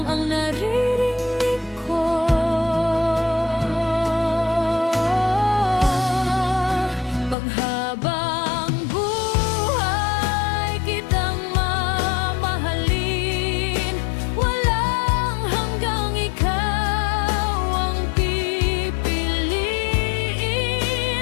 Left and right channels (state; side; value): drops out; right; at 7.4 s